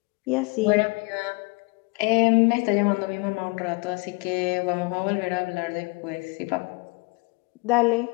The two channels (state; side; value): quieter; right; 29.2 dB